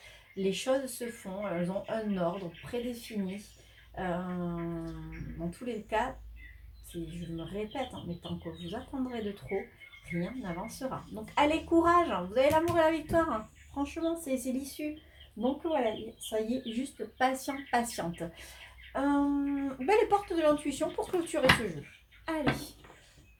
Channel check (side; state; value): both; identical; correlation 1.00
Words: les choses se font, elles ont un ordre prédéfini. Dans tous les cas, je me répète, mais tant que vous attendrez de trop, rien n'avancera. Donc allez, courage, vous avez l'amour et la victoire. Franchement, c'est l'issue. Donc voilà, ça y est, juste patiente. Les portes de l'intuition pour clôturer ce jeu. Allez.